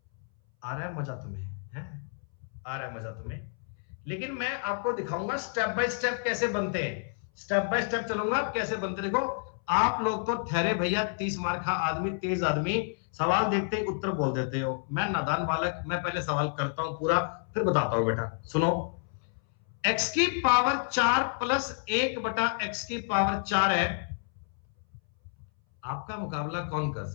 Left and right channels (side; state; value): right; silent; 58 dB below the other